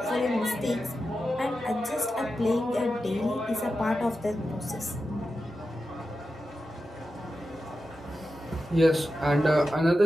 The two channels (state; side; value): normal; both; correlation 0.91